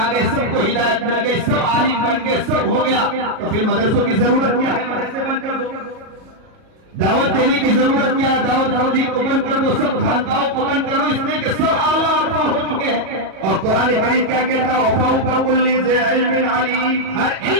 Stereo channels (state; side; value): late; left; 37 ms